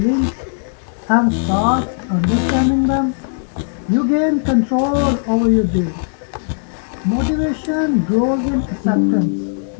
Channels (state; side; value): silent; right; 68 dB below the other